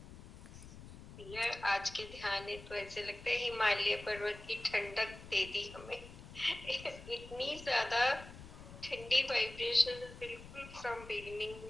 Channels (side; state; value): left; noise; rumble, 15 dB below the sound